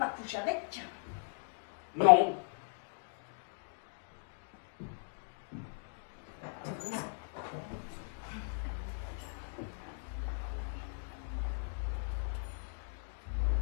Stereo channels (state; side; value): silent; right; digital silence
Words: coucher avec. Non.